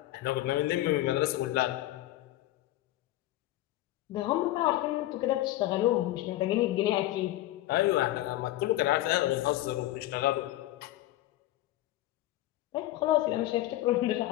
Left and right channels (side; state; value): right; quieter; 15.7 dB